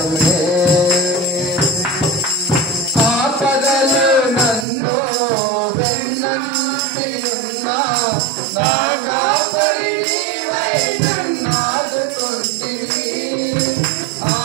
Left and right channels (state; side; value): drops out; left; at 4.7 s